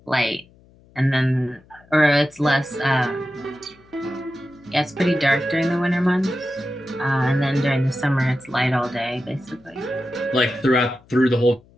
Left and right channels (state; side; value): noise; left; hum, 28 dB below the sound